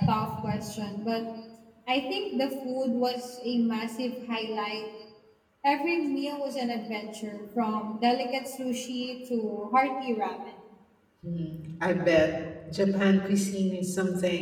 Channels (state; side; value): identical; both; correlation 1.00